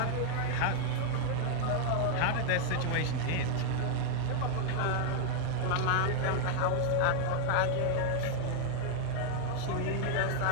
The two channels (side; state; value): both; different; correlation 0.00